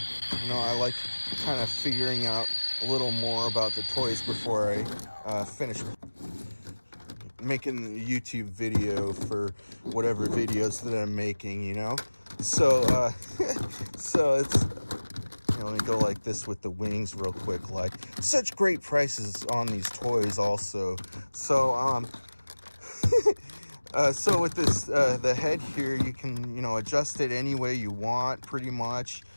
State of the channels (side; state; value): both; inverted; correlation -1.00